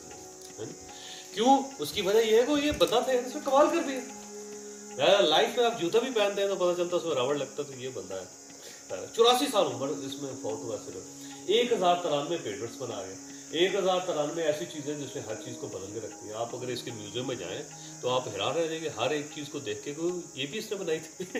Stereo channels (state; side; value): identical; both; correlation 1.00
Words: है ना. क्यों, उसकी वजह ये है कि ये बंदा था, इसने कमाल कर दिया. लाइफ में आप जूता भी पहनते हैं तो पता चलता उसमें रबड़ लगता, तो ये बंदा है. 84 साल उम्र इसमें फौत हुआ सिर्फ. 1093 पेटेंट्स बना गए. 1093 ऐसी चीजें जिसमें हर चीज को बदल के रखती है. आप अगर इसके म्यूजियम में जाएं तो आप हैरान रह जाएंगे हर एक चीज को देख के, ये भी इसने बनाई थी.